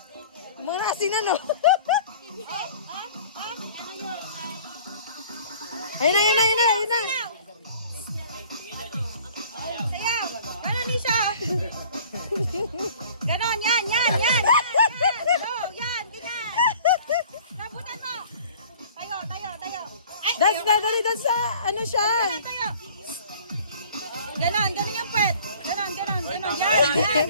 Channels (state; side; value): inverted; both; correlation -0.49